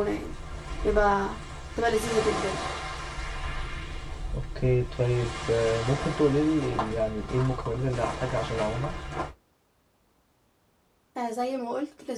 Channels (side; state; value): both; identical; correlation 1.00